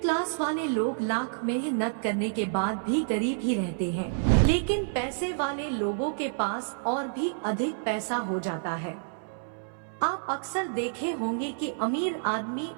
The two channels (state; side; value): silent; left; 59 dB below the other